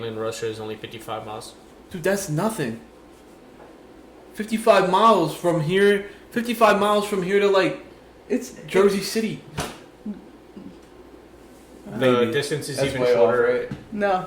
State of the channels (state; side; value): identical; both; correlation 1.00